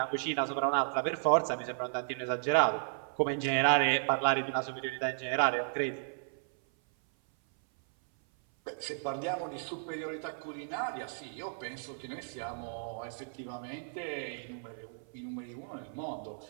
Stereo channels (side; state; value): left; silent; 55 dB below the other